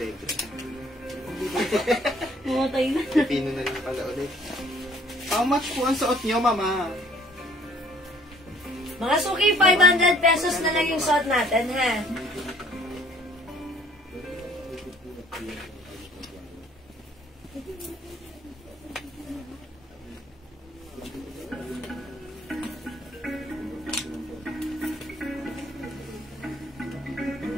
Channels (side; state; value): both; normal; correlation 0.58